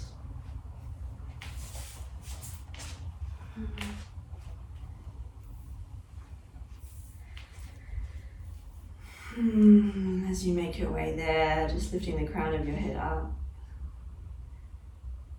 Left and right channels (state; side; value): identical; both; correlation 1.00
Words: As you make your way there, just lifting the crown of your head up.